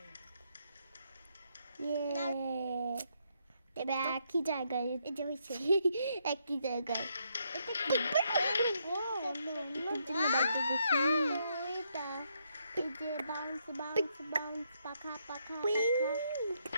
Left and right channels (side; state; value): both; inverted; correlation -0.76